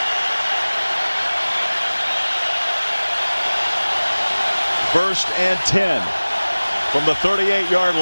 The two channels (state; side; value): inverted; both; correlation -1.00